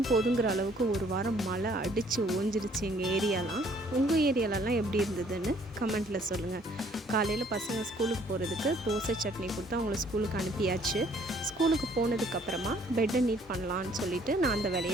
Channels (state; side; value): normal; both; correlation 0.61